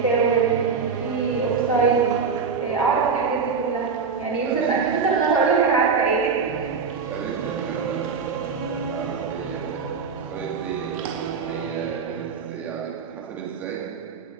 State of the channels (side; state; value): left; quieter; 5.5 dB